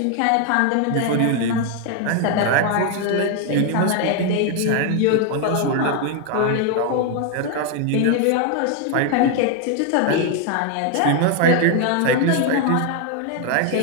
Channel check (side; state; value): both; different; correlation 0.01